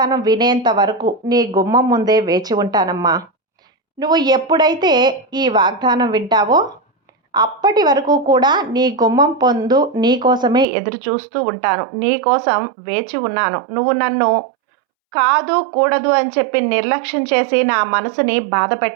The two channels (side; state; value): left; drops out; at 10.7 s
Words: వినేంత వరకు నీ గుమ్మం ముందే వేచి ఉంటానమ్మా. నువ్వు ఎప్పుడైతే ఈ వాగ్దానం వింటావో అప్పటి వరకు కూడా నీ గుమ్మం పొందు నీ కోసమే ఎదురు చూస్తూ ఉంటాను, నీ కోసం వేచి ఉన్నాను. నువ్వు నన్ను కాదు కూడదు అని చెప్పి నిర్లక్ష్యం చేసి నా మనసుని బాధ